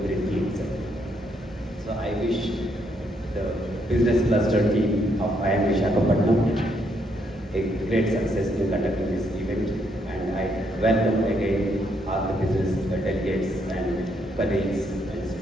Vriddhi itself. So I wish the business cluster team of IIM Visakhapatnam a great success in conducting this event, and I welcome again all the business delegates and colleagues and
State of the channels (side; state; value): both; normal; correlation 0.74